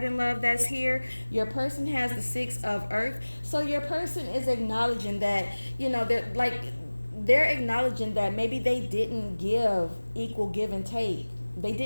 in love that's here. Your person has the 6 of Earth. So your person is acknowledging that, they're acknowledging that maybe they didn't give equal give and take. They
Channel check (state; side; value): inverted; both; correlation -1.00